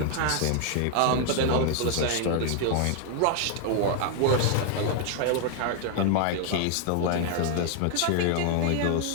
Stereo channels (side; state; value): both; different; correlation 0.00